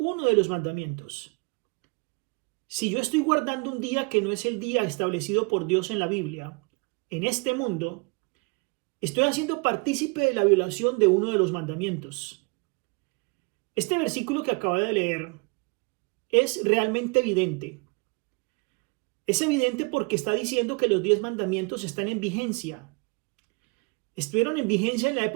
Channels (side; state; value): left; quieter; 31.6 dB